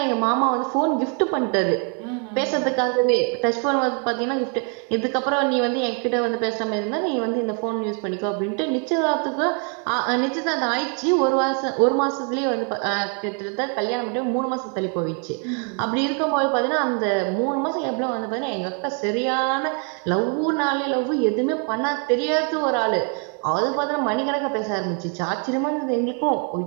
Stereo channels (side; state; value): left; quieter; 39.8 dB